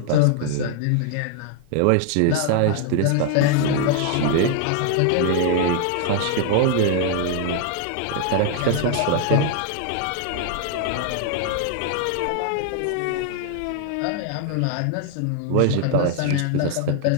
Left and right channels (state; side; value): different; both; correlation 0.00